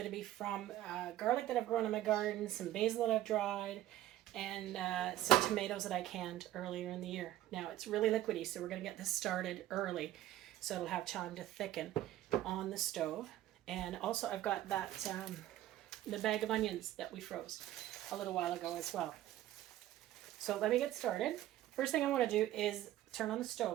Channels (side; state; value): left; quieter; 13.7 dB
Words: to be from garlic that I've grown in my garden, some basil that I've dried, and some tomatoes that I canned earlier in the year. Now it's really liquidy, so we're going to get this started early so it'll have time to thicken on the stove. And also I've got that the bag of onions that we froze a little while ago as well. So let me get started. First thing I want to do is turn on the